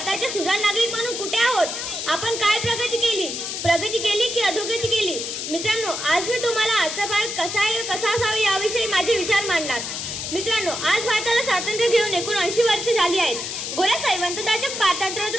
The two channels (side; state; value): left; noise; hiss, 5 dB below the sound